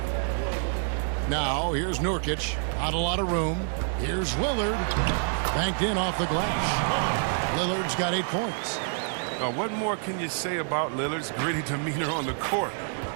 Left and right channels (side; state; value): left; silent; 60 dB below the other